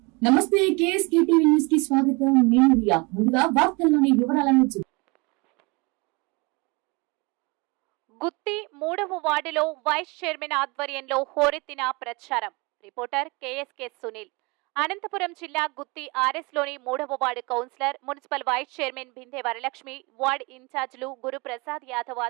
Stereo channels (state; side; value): quieter; left; 27.4 dB